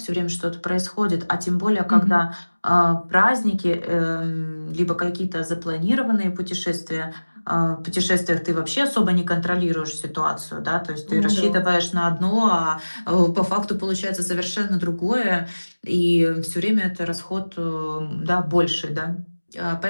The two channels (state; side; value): inverted; both; correlation -1.00